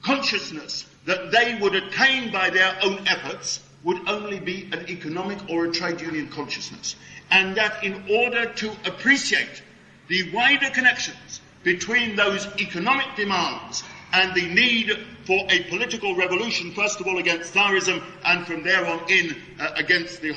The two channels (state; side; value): identical; both; correlation 1.00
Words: consciousness that they would attain by their own efforts would only be an economic or a trade union consciousness, and that in order to appreciate the wider connections between those economic demands and the need for a political revolution, first of all against Tsarism and from there on in against the